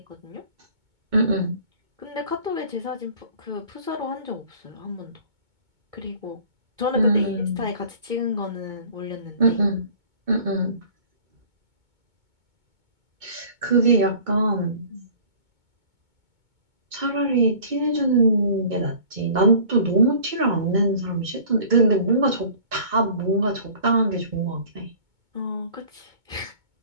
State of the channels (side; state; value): left; late; 2.2 ms